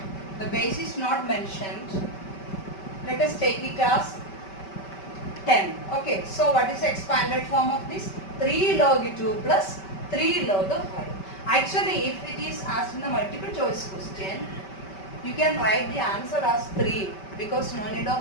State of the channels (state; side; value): late; right; 5.2 ms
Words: The base is not mentioned. Let us take it as 10. Okay, so what is the expanded form of this? 3 log 2 plus 3 log 5. Actually, if it is asked in the multiple choice question, You can write the answer as 3 because no need